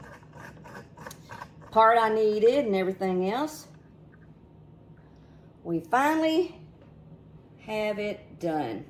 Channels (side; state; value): both; identical; correlation 1.00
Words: part I needed and everything else, we finally have it done.